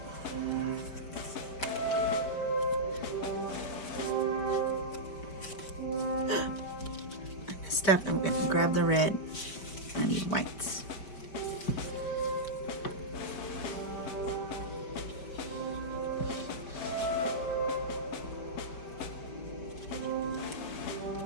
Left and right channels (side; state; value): right; late; 5.1 ms